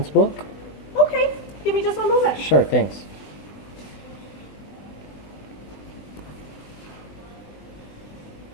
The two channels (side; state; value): right; late; 20 ms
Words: book. Okay, give me just 1 moment. Sure, thanks.